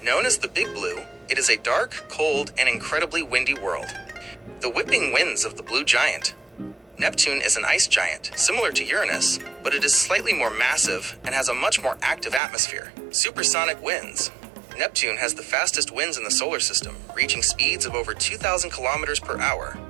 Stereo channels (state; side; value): drops out; left; at 12.4 s